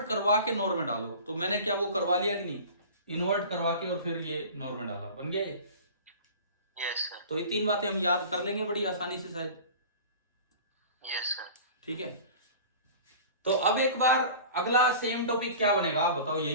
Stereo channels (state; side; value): inverted; both; correlation -0.39